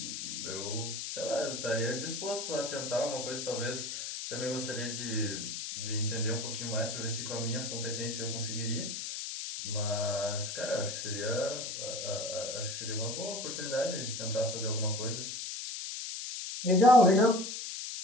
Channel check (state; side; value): noise; left; hiss, 5 dB below the sound